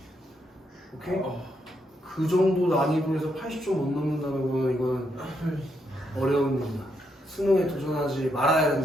오케이? 그 정도 난이도에서 80점 못 넘는다는 거는 이건 어려운 일이다. 수능에 도전하지 말아야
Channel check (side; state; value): both; normal; correlation 0.79